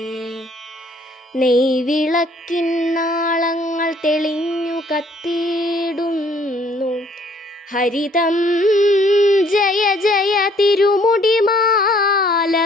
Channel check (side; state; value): both; normal; correlation 0.61